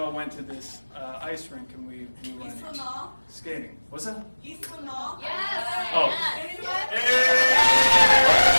to this ice rink, and we went skating. What's that? Eastwood Mall? Yes. Oh.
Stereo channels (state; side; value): inverted; both; correlation -1.00